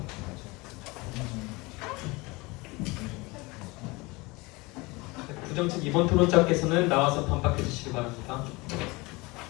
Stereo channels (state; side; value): quieter; right; 24.3 dB